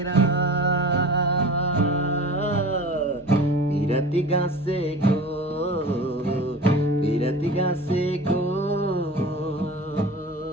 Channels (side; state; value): both; normal; correlation 0.37